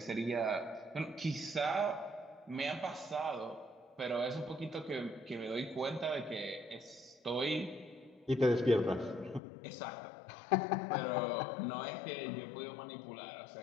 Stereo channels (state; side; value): drops out; right; at 9.4 s